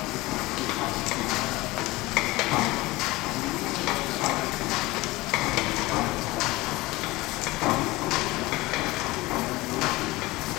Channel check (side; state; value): right; quieter; 20.4 dB